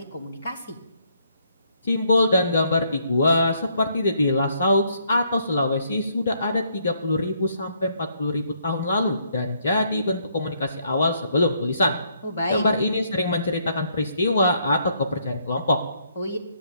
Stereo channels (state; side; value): inverted; both; correlation -0.71